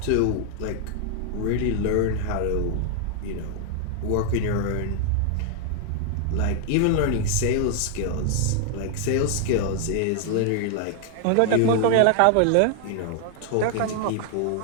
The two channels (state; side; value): different; both; correlation 0.00